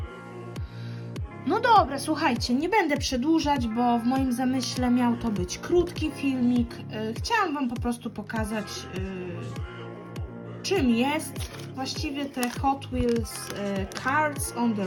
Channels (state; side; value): identical; both; correlation 1.00